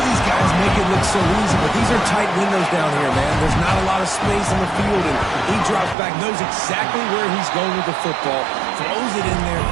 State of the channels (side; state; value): left; drops out; at 6.0 s